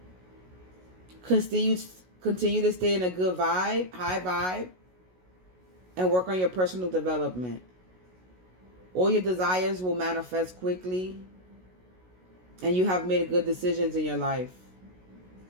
Continue to stay in a good vibe, high vibe, and work on your personal development. All your desires will manifest quickly, and you have made good decisions in your life.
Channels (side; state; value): left; late; 16 ms